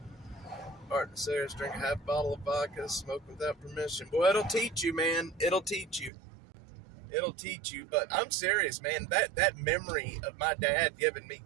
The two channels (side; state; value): left; drops out; at 6.1 s